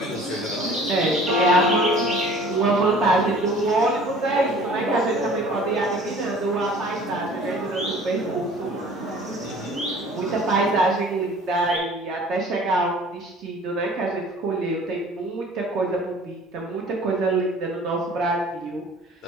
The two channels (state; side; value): normal; both; correlation 0.48